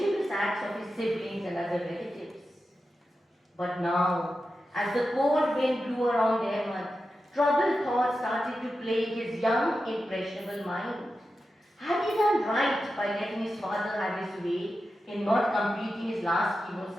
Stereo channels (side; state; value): both; normal; correlation 0.91